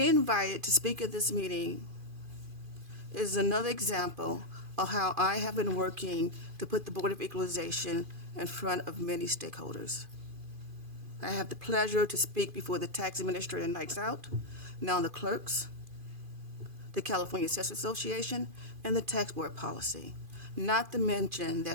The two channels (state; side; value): late; left; 2.5 ms